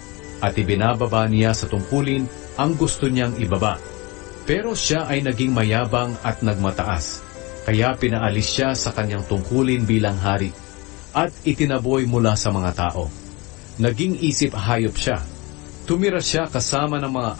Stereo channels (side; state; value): right; quieter; 25.3 dB